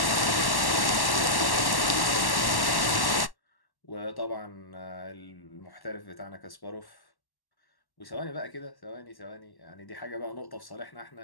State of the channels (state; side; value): late; right; 1.1 ms